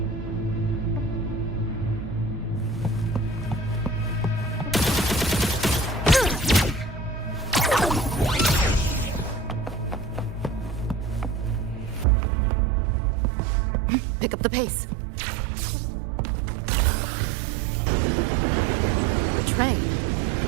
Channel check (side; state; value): left; drops out; at 12.1 s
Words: Pick up the pace. The train.